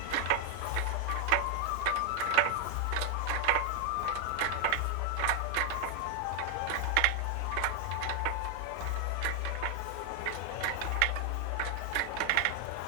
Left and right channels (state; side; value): different; both; correlation 0.00